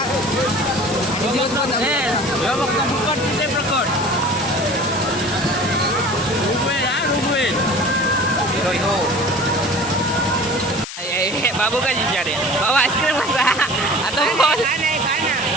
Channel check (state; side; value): noise; left; hiss, 10 dB below the sound